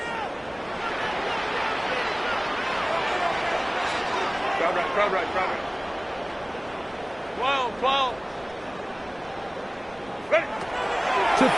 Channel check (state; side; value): noise; right; rumble, 25 dB below the sound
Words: Crowd right. 12. Ready. To